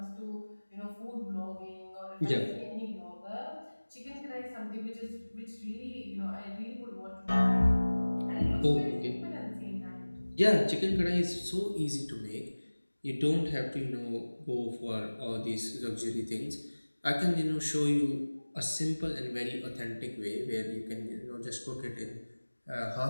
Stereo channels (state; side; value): inverted; both; correlation -1.00